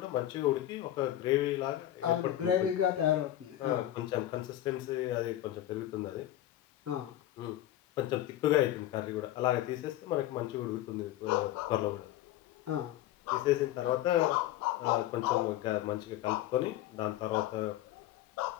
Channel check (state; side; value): quieter; right; 13.5 dB